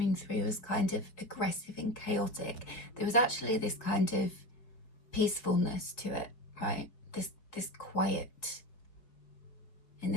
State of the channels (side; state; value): right; late; 4.9 ms